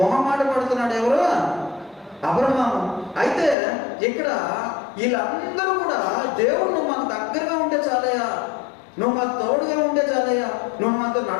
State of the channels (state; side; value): drops out; right; at 3.6 s